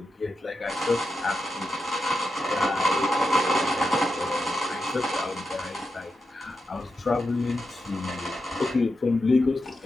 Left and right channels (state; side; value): normal; both; correlation 0.88